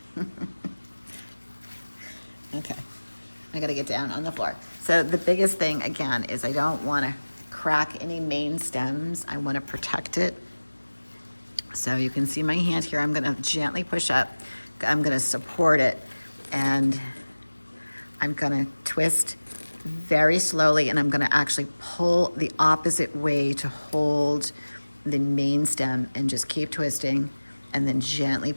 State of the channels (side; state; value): both; inverted; correlation -1.00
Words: Okay, I gotta get down on the floor. So the biggest thing, again, is I don't wanna crack any main stems. I wanna protect it. So you can see my hand here. I'm gonna gently push up. I'm gonna support it, and I'm gonna twist very slowly, and I'm gonna actually pull the opposite way to hold the main stem, and just keep twisting, and then gently